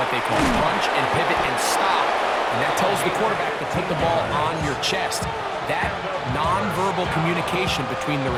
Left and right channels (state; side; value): identical; both; correlation 1.00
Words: they call, punch and pivot and stop. And that tells the quarterback to put the ball on your chest. That nonverbal communication between the